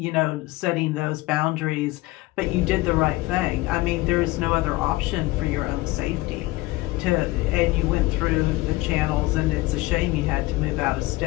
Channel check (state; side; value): quieter; right; 20.2 dB